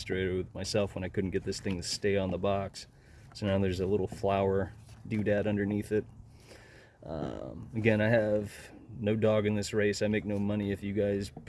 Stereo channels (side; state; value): both; identical; correlation 1.00